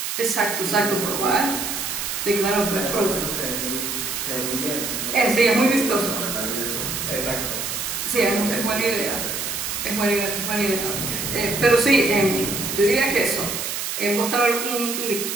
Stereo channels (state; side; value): noise; right; hiss, 3 dB below the sound